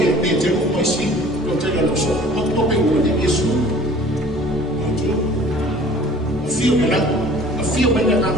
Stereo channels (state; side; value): normal; both; correlation 0.49